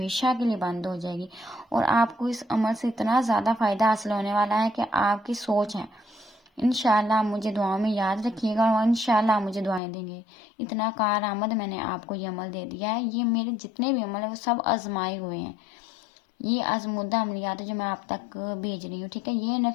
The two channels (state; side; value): drops out; right; at 9.8 s